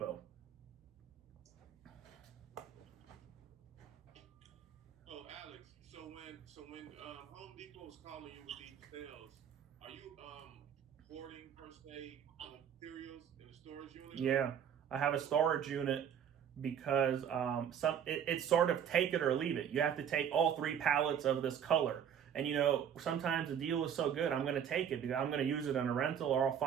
Oh, Alex, so when Home Depot is calling you with these sales, are you hoarding per se materials in the storage unit? Yeah, I have a storage unit because it's sort of take it or leave it. You have to take all 3 pallets of this color. And sometimes the deal is so good, I'm going to take it because I'm going to use it in a rental, or I'll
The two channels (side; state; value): left; quieter; 8.7 dB